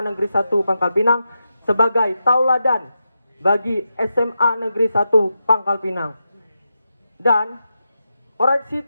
Negeri 1 Pangkal Pinang sebagai tauladan bagi SMA Negeri 1 Pangkal Pinang. Dan koreksi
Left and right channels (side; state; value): both; inverted; correlation -0.89